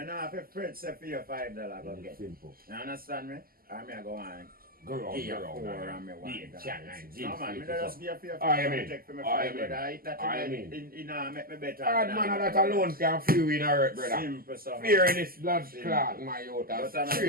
have to fret, say, for your $5 go get. Simple. You understand me? I mean, I go on. Go Give you on, $4 go and me on. want Yeah, it. chat, man. No, man, me just give you I $5 mean. take for me I $5, mean. brother. I eat that I in mean. make me better. Hard man, that alone can free you in a hurt, brother. Simple, so. Fear in this blood Simple. clot, my youth. But That's I'm straight,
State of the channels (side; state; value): left; late; 0.42 ms